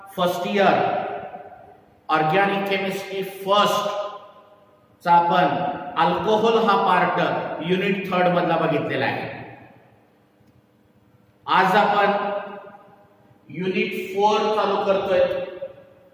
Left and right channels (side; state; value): both; identical; correlation 1.00